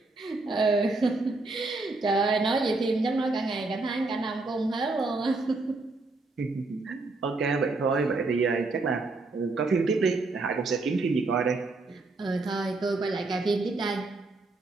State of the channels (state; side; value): quieter; left; 3.4 dB